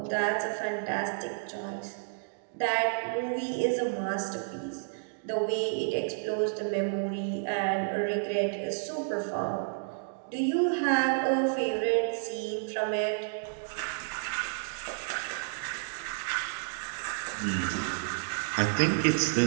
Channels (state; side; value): silent; left; digital silence